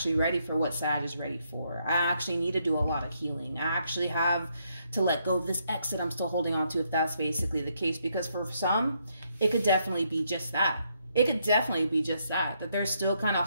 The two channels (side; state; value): both; inverted; correlation -0.75